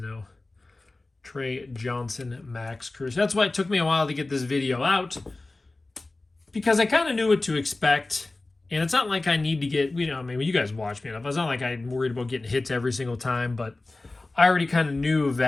Trey Johnson, Max Cruz. That's why it took me a while to get this video out, because I kind of knew what to expect. And it's not like I need to get, you know, I mean, you guys watch me enough. It's not like I'm worried about getting hits every single time, but I already kind of knew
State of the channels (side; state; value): right; quieter; 3.1 dB